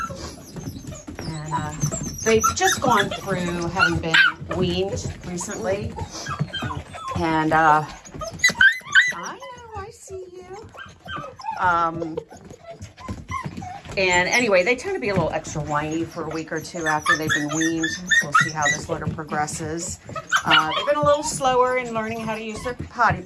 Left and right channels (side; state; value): both; identical; correlation 1.00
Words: And they've just gone through having been weaned recently. And I know, I see you. And anyway, they tend to be a little extra whiny for a week or 2 after they've been weaned. We'll see how this litter progresses. They've been a little slower in learning how to use their potty